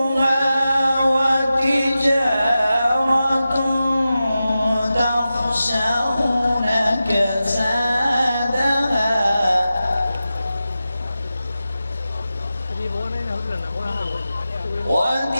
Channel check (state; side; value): inverted; both; correlation -0.93